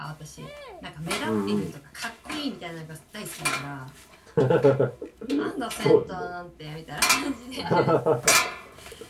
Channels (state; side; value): identical; both; correlation 1.00